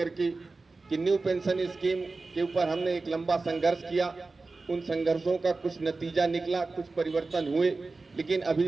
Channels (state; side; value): quieter; left; 3.7 dB